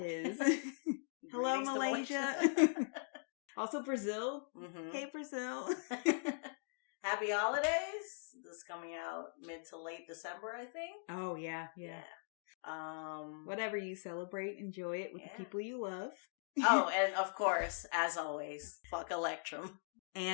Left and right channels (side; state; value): right; silent; digital silence